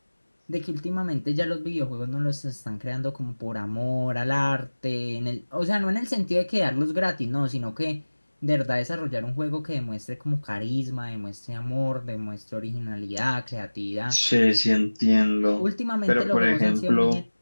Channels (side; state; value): both; inverted; correlation -1.00